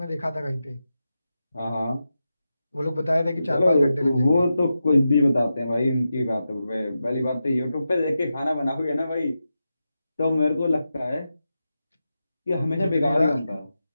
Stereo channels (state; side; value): inverted; both; correlation -0.90